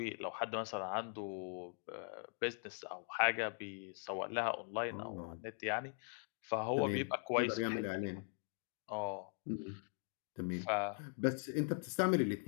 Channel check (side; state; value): right; silent; 50 dB below the other